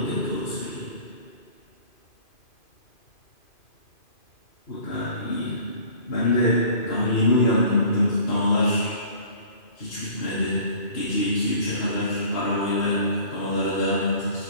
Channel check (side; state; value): right; late; 2.5 ms